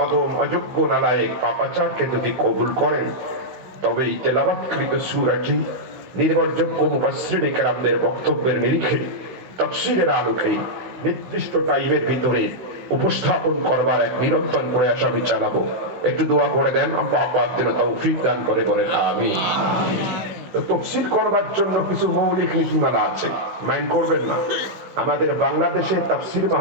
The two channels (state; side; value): late; left; 16 ms